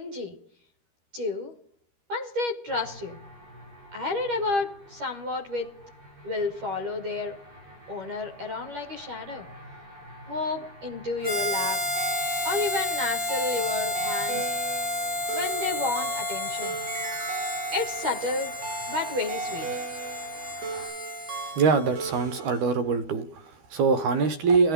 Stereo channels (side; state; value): left; late; 13 ms